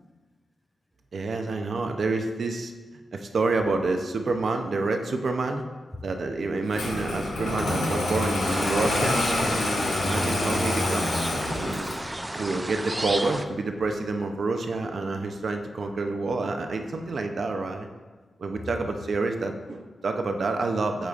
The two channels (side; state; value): both; normal; correlation 0.87